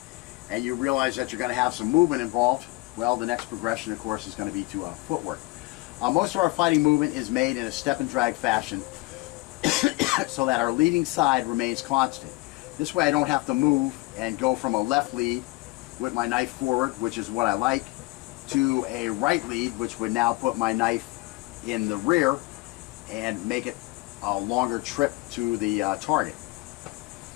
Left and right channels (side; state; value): right; quieter; 22.2 dB